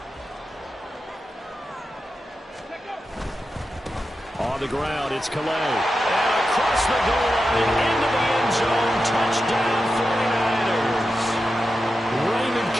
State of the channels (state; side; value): normal; both; correlation 0.90